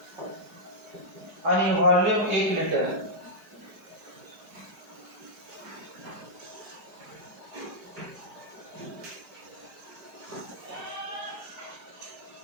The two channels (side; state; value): left; late; 5.0 ms